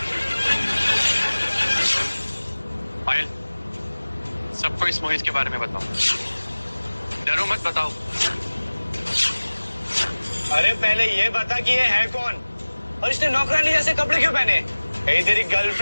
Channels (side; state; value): both; inverted; correlation -1.00